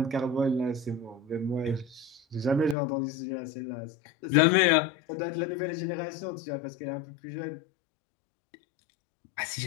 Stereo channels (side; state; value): right; drops out; at 2.8 s